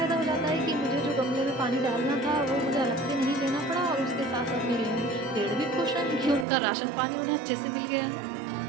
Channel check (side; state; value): left; drops out; at 6.5 s